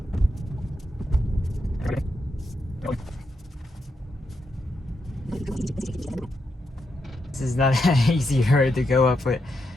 This is not an easy road to go up with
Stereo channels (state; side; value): normal; both; correlation 0.83